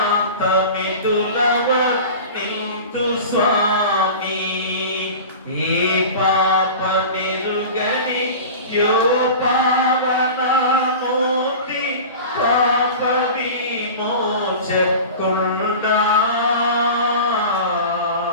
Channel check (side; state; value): both; inverted; correlation -0.34